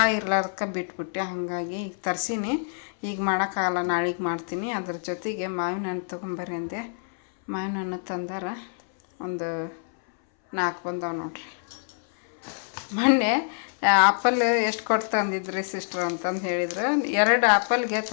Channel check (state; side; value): silent; right; 61 dB below the other